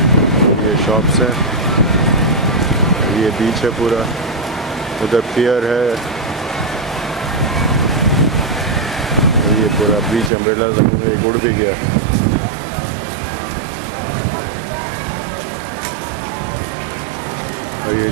ये शॉप्स हैं. ये बीच है पूरा. उधर पियर है. ये पूरा बीच अम्ब्रेला एक उड़ भी गया. और ये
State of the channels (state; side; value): drops out; left; at 10.3 s